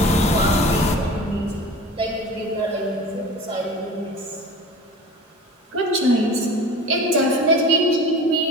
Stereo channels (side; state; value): both; normal; correlation 0.38